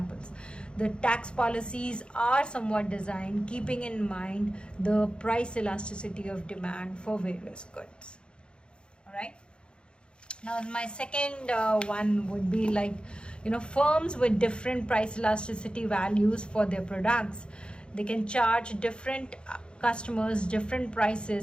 The tax policies are somewhat designed keeping in mind the price elasticity of demand for various goods. All right. Now my second one would be like, firms with different price elasticity values for their products, they can charge different customers different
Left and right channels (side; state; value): right; late; 0.054 ms